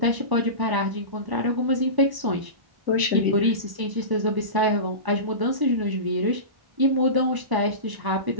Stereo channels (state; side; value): late; left; 1.0 ms